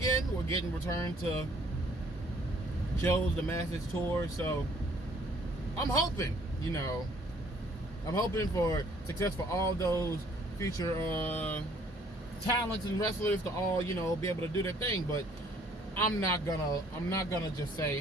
We're getting returned to shows, the Masters tour. So I'm hoping, I'm hoping for success for all those future talents and wrestlers to all, be able to do their thing. But I'm not gonna just say,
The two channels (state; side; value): normal; both; correlation 0.60